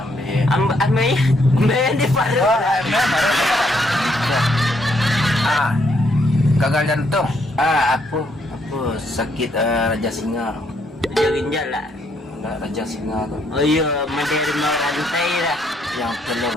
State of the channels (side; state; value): both; normal; correlation 0.72